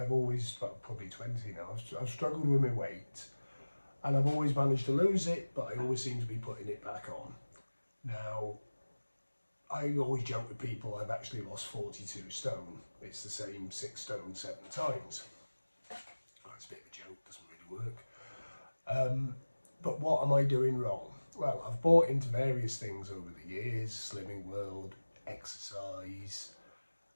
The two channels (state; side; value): inverted; both; correlation -1.00